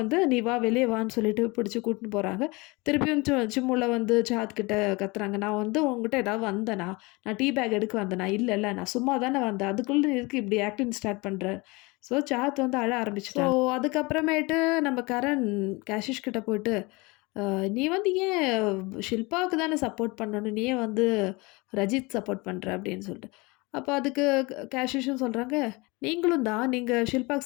நீ வா, வெளியே வான்னு சொல்லிட்டு பிடிச்சி கூட்டின்னு போகிறாங்க. திருப்பியும் சிம்முல வந்து சாஹத் கிட்ட கத்துறாங்க, நான் வந்து உங்ககிட்ட ஏதாவது வந்தேனா, நான் டீ பேக் எடுக்க வந்தேனா, இல்லை நான் சும்மா தானே வந்தேன், அதுக்குள்ளே எதுக்கு இப்படி ஆக்டிங் ஸ்டார்ட் பண்ணுறேன். ஸோ சாஹத் வந்து அழ ஆரம்பிச்சிட்டாங்க. ஸோ அதுக்கப்புறமேட்டு நம்ம கரண் கேஷிஷ் கிட்ட போயிட்டு, நீ வந்து ஏன் ஷில்பாவுக்கு தானே சப்போர்ட் பண்ணணும், நீ ஏன் வந்து ரஜித் சப்போர்ட் பண்ணுற அப்படின்னு சொல்லிட்டு. அப்போ அதுக்கு கேஷிஷும் சொல்கிறாங்க, நீங்களும் தான், நீங்கள்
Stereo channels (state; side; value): quieter; right; 25.2 dB